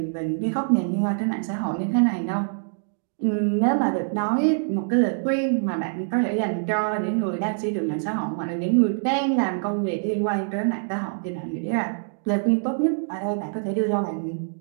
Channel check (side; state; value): left; silent; digital silence